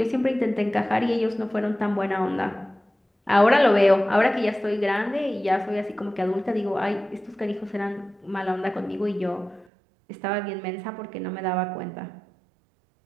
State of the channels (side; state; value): left; drops out; at 9.7 s